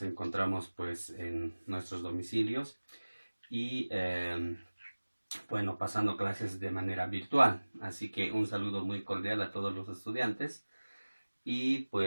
encontramos pues en nuestros domicilios y bueno, pasando clases de manera virtual. Así que un saludo muy cordial a todos los estudiantes y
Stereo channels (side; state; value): both; inverted; correlation -1.00